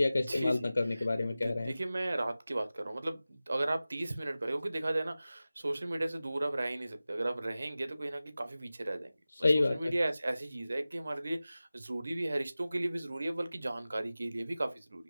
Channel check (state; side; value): inverted; both; correlation -0.96